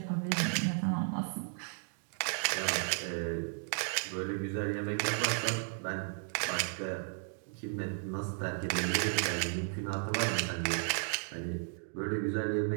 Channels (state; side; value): silent; left; 55 dB below the other